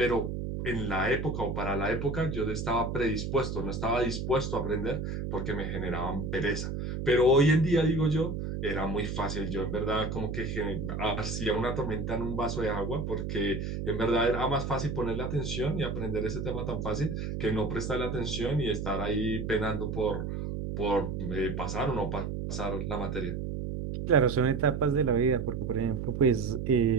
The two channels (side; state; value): right; noise; hum, 4 dB below the sound